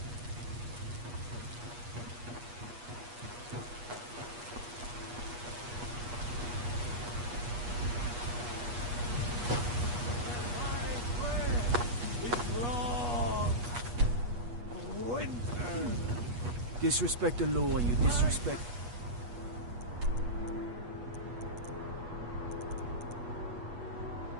Disrespect the law and you disrespect...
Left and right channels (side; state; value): left; late; 8.3 ms